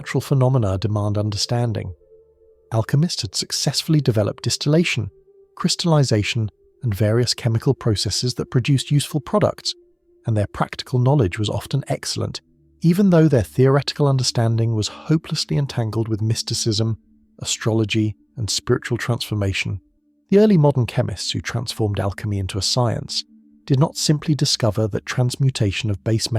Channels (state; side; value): identical; both; correlation 1.00